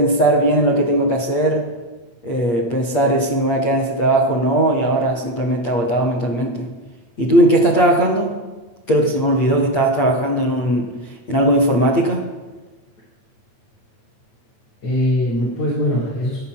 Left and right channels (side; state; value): right; late; 8.6 ms